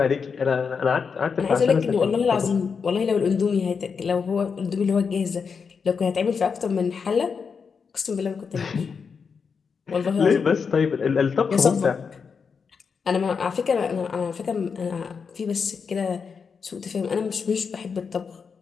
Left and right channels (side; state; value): right; quieter; 5.8 dB